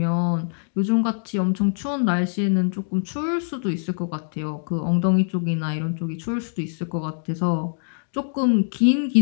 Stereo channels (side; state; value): right; silent; digital silence